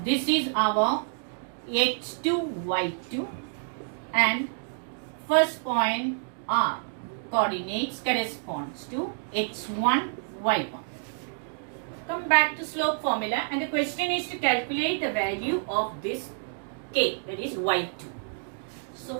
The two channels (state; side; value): silent; left; digital silence